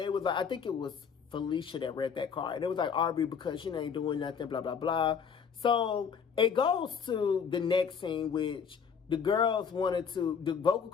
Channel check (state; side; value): quieter; right; 6.7 dB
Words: was like, I think it was Felicia that read that card. And it was like Aubrey because she ain't doing nothing, blah, blah, blah. So it goes to the next scene, which the girls wanted to, the vocal